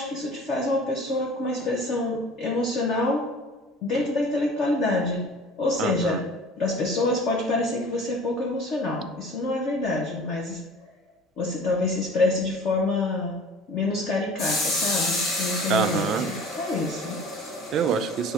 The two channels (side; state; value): both; normal; correlation 0.44